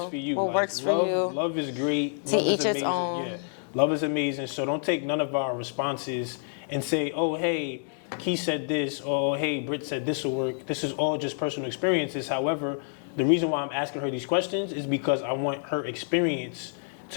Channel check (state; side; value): silent; right; 59 dB below the other